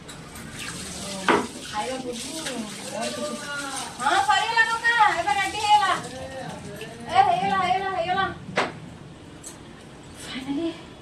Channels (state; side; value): identical; both; correlation 1.00